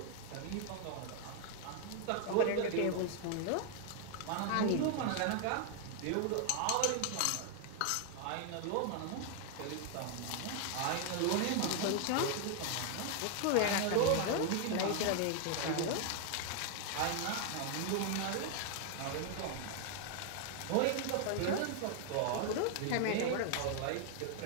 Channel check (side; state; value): both; different; correlation 0.00